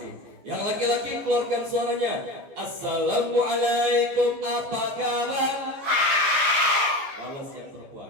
Yang laki-laki keluarkan suaranya. Assalamualaikum, apa kabar? Balas yang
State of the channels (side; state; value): left; late; 14 ms